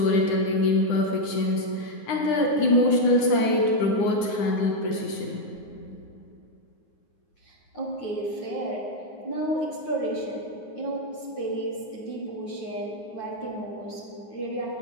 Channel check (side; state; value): right; late; 10 ms